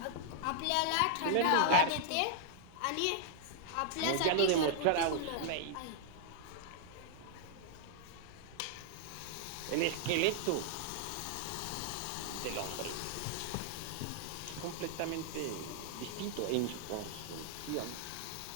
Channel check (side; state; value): both; different; correlation -0.01